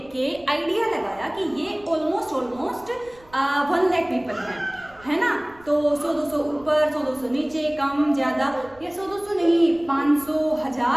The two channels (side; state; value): right; noise; rumble, 26 dB below the sound